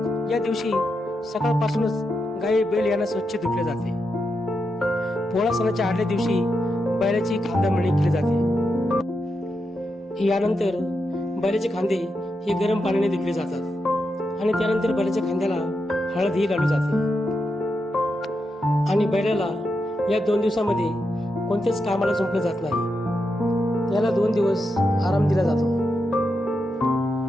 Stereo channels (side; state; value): both; normal; correlation 0.85